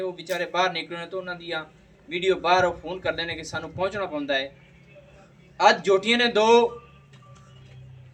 ਵਿਚਾਰੇ ਬਾਹਰ ਨਿਕਲਣੇ ਤੋਂ ਉਹਨਾਂ ਦੀਆਂ ਵੀਡੀਓ ਬਾਹਰ ਉਹ ਫੋਨ ਕਰਦੇ ਨੇ ਕਿ ਸਾਨੂੰ ਪਹੁੰਚਣਾ ਪੈਂਦਾ ਹੈ। ਅੱਜ ਜੋਟੀਆਂ ਨੇ ਦੋ,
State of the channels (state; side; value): identical; both; correlation 1.00